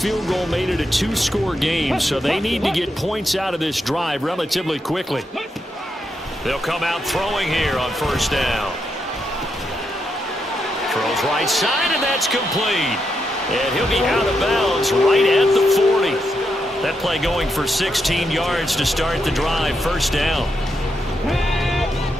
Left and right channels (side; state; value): both; normal; correlation 0.83